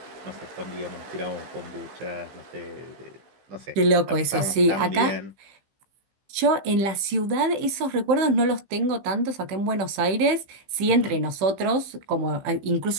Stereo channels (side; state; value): left; late; 15 ms